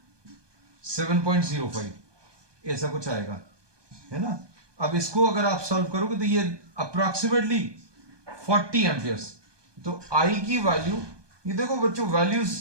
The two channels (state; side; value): late; left; 1.2 ms